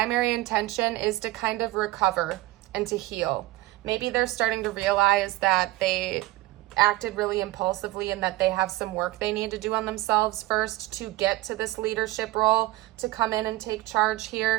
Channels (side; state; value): left; quieter; 18.3 dB